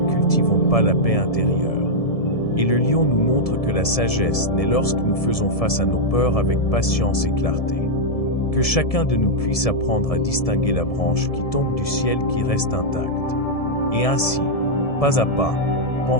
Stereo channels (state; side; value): late; right; 1.7 ms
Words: cultivons pas la paix intérieure. Et le lion nous montre que la sagesse naît lorsque nous faisons face à nos peurs avec patience et clarté. Que chacun de nous puisse apprendre à distinguer la branche qui tombe du ciel qui reste intacte. Et ainsi, pas à pas,